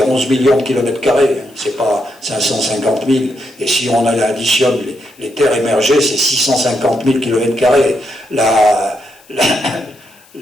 11 millions de kilomètres carrés, c'est pas 550 000, et si on additionne les terres émergées, c'est 650 000 kilomètres carrés. La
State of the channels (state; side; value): noise; left; hiss, 28 dB below the sound